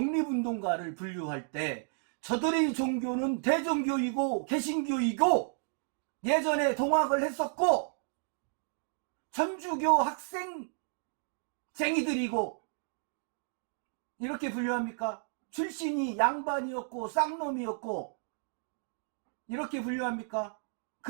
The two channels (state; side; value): silent; left; digital silence